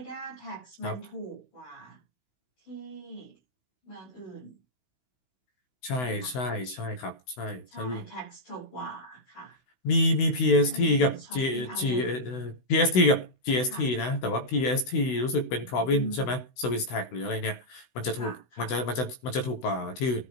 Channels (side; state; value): right; late; 16 ms